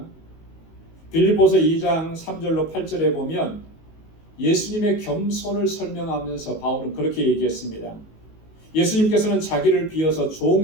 빌립보서 2장 3절로 8절에 보면 예수님의 겸손을 설명하면서 바울은 그렇게 얘기했습니다. 예수님께서는 자기를 비어서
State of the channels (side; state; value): right; late; 19 ms